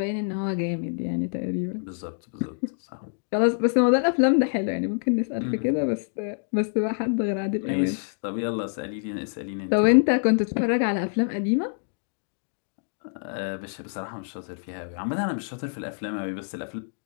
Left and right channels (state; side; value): silent; right; digital silence